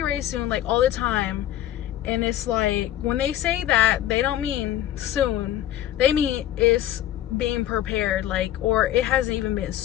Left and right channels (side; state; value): right; quieter; 12.6 dB